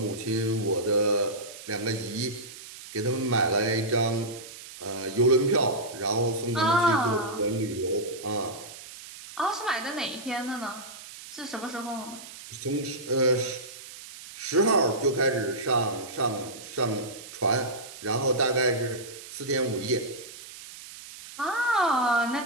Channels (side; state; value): right; noise; hiss, 15 dB below the sound